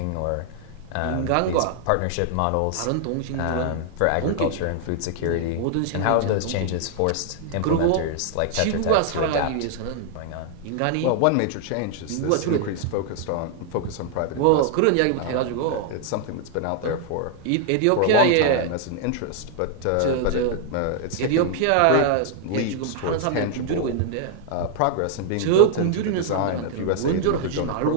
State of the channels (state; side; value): different; both; correlation 0.00